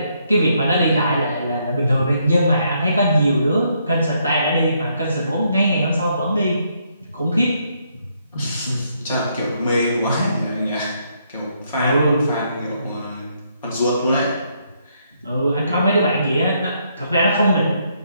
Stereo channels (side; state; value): both; inverted; correlation -0.73